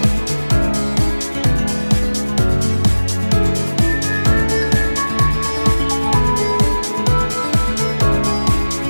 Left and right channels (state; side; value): inverted; both; correlation -1.00